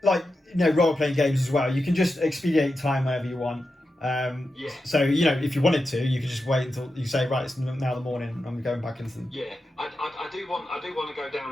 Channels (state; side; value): normal; both; correlation 0.90